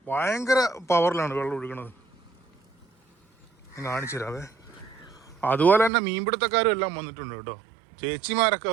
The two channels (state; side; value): drops out; left; at 5.9 s